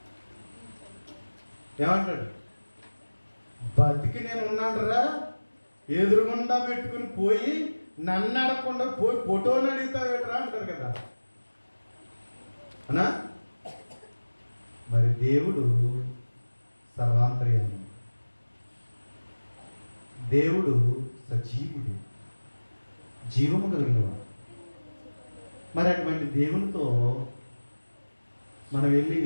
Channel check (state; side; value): inverted; both; correlation -1.00